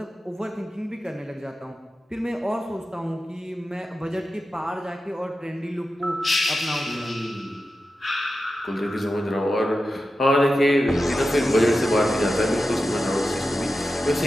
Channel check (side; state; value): both; normal; correlation 0.92